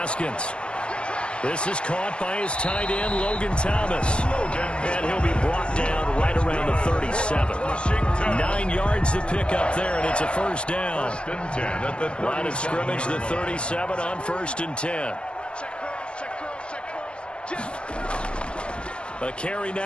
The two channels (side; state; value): right; late; 0.056 ms